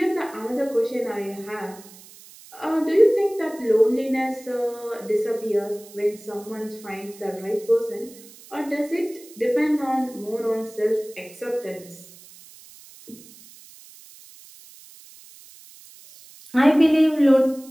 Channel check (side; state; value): right; noise; hiss, 21 dB below the sound